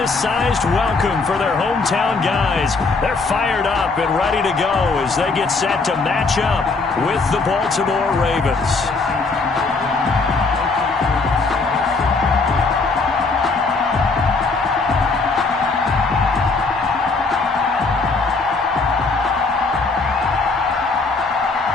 welcome for their hometown guys. They're fired up and ready to go as they get set to match up with the Baltimore Ravens.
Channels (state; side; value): quieter; right; 4.0 dB